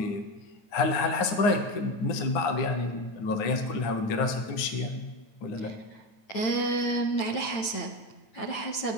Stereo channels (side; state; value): right; late; 9.1 ms